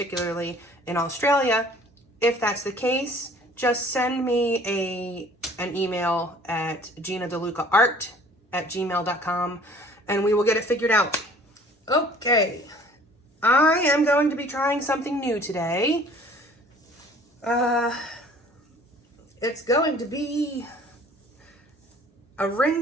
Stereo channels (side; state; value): both; normal; correlation 0.52